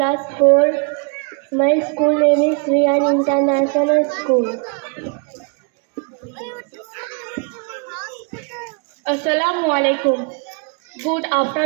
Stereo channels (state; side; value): quieter; left; 35.4 dB